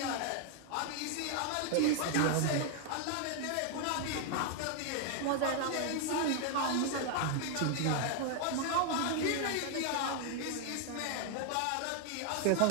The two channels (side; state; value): both; different; correlation 0.00